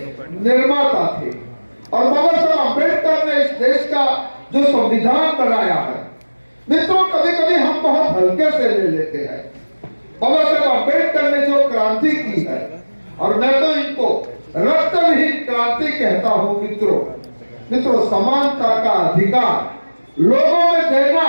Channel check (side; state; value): both; inverted; correlation -1.00